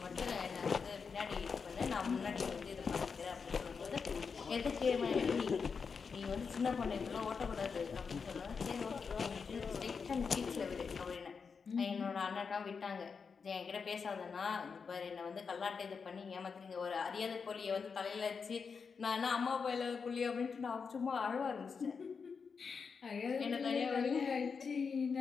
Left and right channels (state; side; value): quieter; right; 5.6 dB